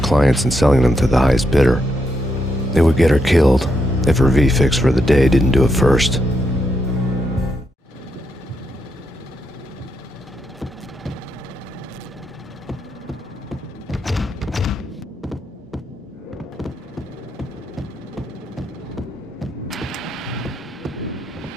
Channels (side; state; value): both; normal; correlation 0.81